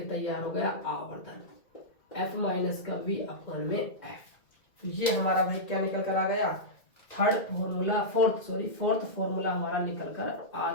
तैयार हो गया आवर्धन, f माइनस का v अपॉन में f। तो ये हमारा भाई क्या निकल कर आ गया, फोर्थ फॉर्मूला हमारा निकल कर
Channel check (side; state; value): right; late; 2.0 ms